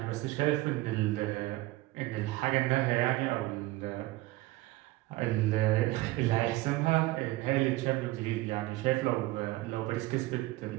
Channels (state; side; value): quieter; left; 18.9 dB